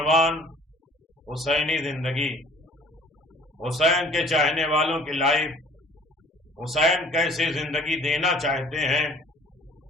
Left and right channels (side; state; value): both; normal; correlation 0.52